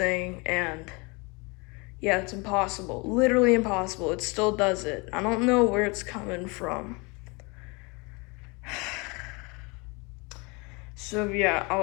and yeah, it's impossible. Literally impossible. It still does it. I don't know where it's coming from. So yeah,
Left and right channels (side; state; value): right; quieter; 28.5 dB